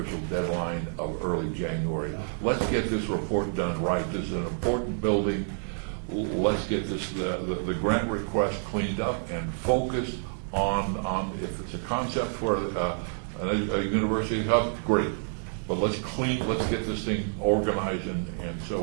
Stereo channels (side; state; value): left; silent; digital silence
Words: deadline of early January. Let's get this report done right. This is an important building. Let's get this the grant request cleaned up and focused on if it's a concept for a university hub, great. But let's get this thing organized and